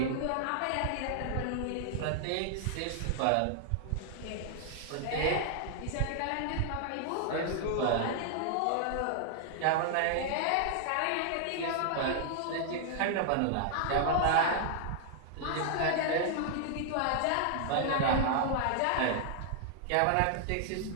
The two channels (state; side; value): different; both; correlation -0.01